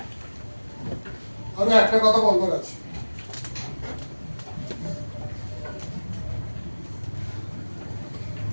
আমি একটা কথা বলবার আছে।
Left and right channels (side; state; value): both; inverted; correlation -1.00